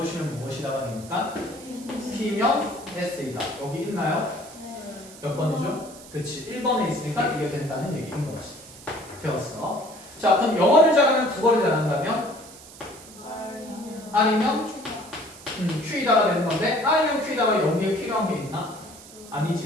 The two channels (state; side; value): noise; right; hiss, 18 dB below the sound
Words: 무엇이다가 되니까 P면 S이다. 여기 있나요? 몇 번이죠? 그치 1번에 있으니까 이게 된다는 얘기인 거지. 되었어. 자 그럼 영어를 잘하면 국어를 잘한다면 R이면 Q이다가 되는 건데 R이면 Q이다가 여기에 필요한 게 있나?